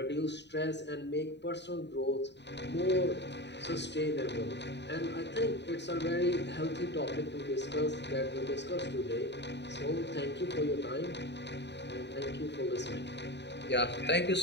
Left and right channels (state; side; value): late; right; 0.50 ms